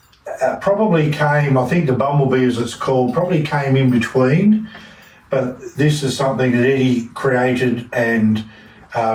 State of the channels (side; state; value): both; identical; correlation 1.00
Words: probably came, I think the Bumblebee, as it's called, probably came in between, but this is something that Eddie created and